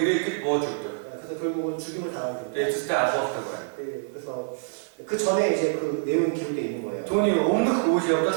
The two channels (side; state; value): left; silent; digital silence